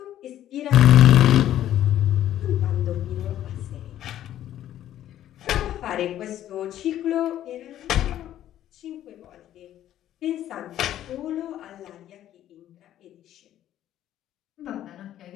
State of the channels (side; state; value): right; quieter; 12.1 dB